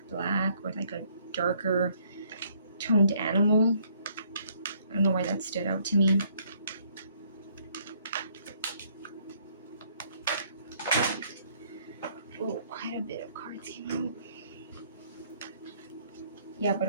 black, or like a darker toned animal. I don't know why that stood out to me. Oh, quite a bit of cards came out. Yeah, but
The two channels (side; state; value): both; inverted; correlation -0.65